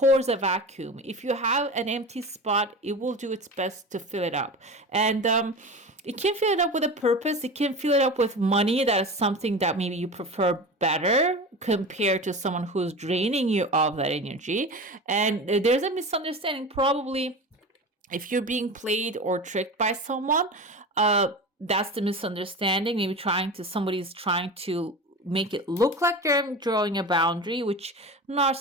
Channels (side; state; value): both; normal; correlation 0.30